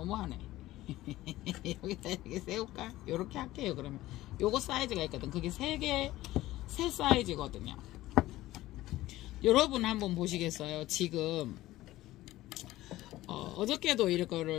여기다 이렇게 세울까? 요렇게 할게요, 그러면. 요거 사이즈가 있거든. 그게 세 사이즈거든요. 여러분 한번 보시겠어요? 지금 어저께도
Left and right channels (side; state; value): right; quieter; 16.4 dB